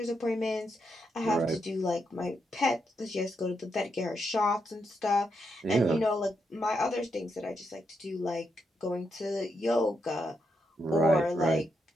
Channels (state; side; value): normal; both; correlation 0.81